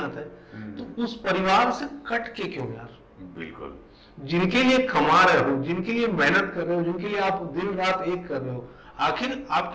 है। तो उस परिवार से कट के क्यों यार? बिल्कुल। जिनके लिए कमा रहे हो, जिनके लिए मेहनत कर रहे हो, जिनके लिए आप दिन रात एक कर रहे हो, आखिर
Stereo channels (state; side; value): identical; both; correlation 1.00